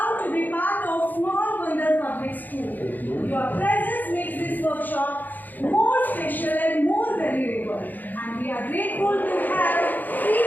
to be part of Small Bandar Public School. Your presence makes this workshop more special and more valuable. And we are grateful to have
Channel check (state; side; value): late; right; 0.085 ms